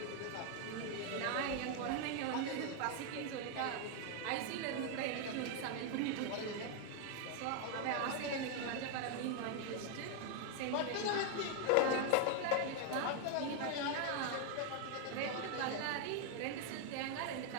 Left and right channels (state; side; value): different; both; correlation 0.00